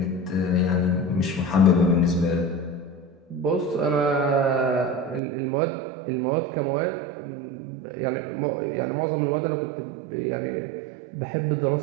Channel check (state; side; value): drops out; left; at 5.2 s